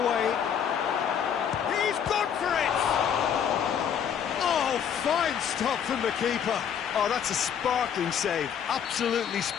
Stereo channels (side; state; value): right; quieter; 8.3 dB